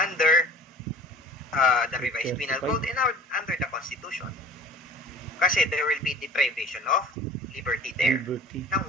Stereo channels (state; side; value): normal; both; correlation 0.45